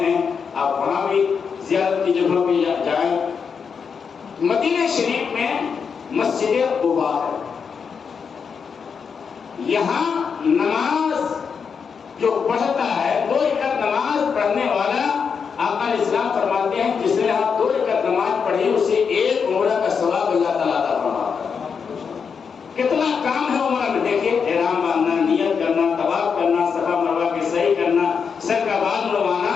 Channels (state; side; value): quieter; right; 6.2 dB